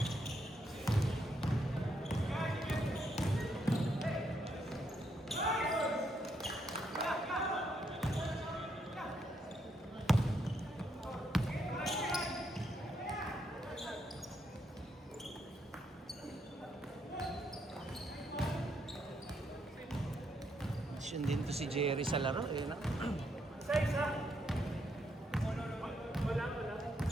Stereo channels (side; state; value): both; normal; correlation 0.76